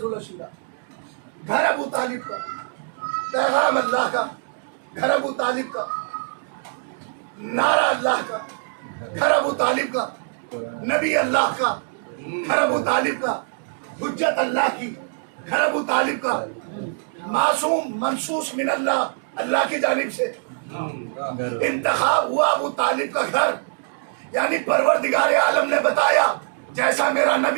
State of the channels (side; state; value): left; silent; 63 dB below the other